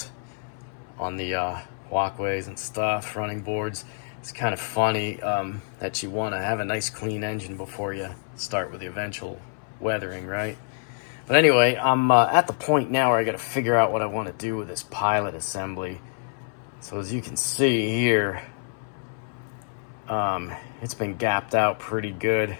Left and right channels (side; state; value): right; silent; 59 dB below the other